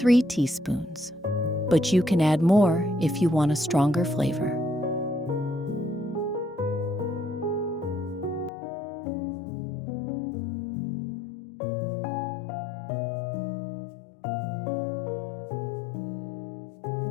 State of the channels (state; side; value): drops out; right; at 8.5 s